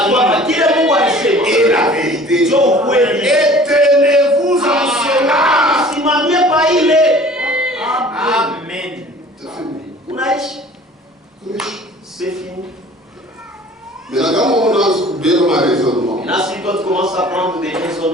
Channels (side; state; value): both; normal; correlation 0.47